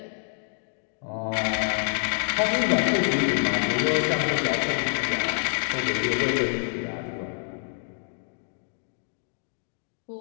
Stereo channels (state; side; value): silent; right; digital silence